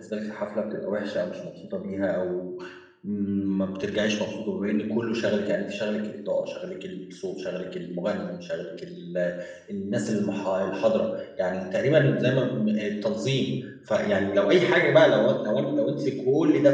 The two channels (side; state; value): both; identical; correlation 1.00